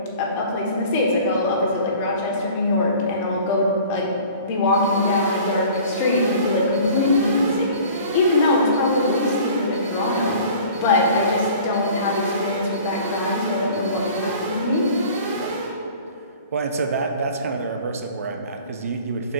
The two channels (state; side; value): inverted; both; correlation -0.46